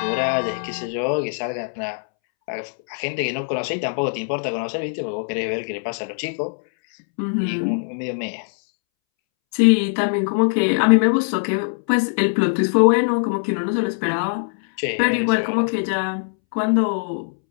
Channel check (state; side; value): silent; right; 65 dB below the other